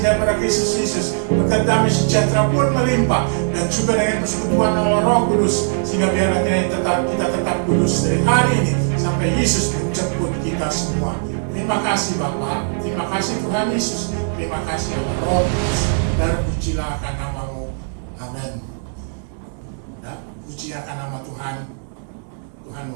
daripada Kristus Yesus, berkat damai sejahtera pun melimpah, dan juga dengan persekutuan Allah Roh Kudus, sehingga biarlah kita tetap kudus dari hari ini sampai Yesus menjemput kita semua. Terima kasih Bapa, terima kasih Tuhan Yesus, terima kasih Allah Roh Kudus, dan pujilah akan nama-Mu. Amin. Puji akan nama Tuhan. Tuhan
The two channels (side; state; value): left; silent; digital silence